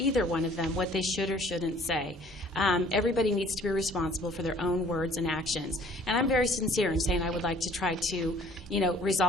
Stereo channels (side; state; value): both; normal; correlation 0.55